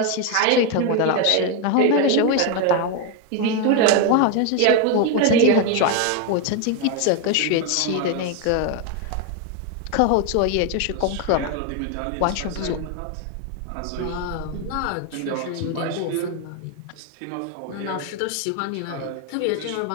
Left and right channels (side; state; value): both; different; correlation 0.01